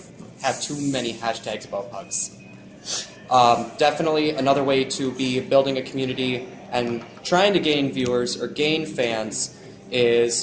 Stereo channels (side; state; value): both; identical; correlation 1.00